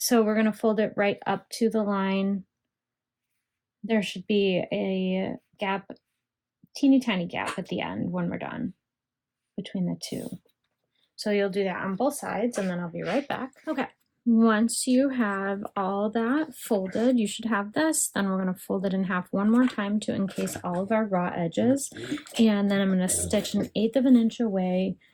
we're gonna fold it right up to the line. There should be a gap, teeny tiny gap at the end when we're done between the two. So you'll do that on both sides, and then I'll be right back. Okay, once you have all that folded, you should have this. Then we're gonna fold it in half one more time to encase all of our raw edges. And then I'm gonna stitch 1/8 of an inch away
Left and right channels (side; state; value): both; identical; correlation 1.00